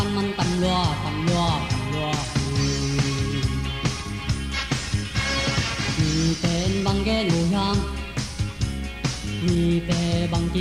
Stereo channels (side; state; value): both; identical; correlation 1.00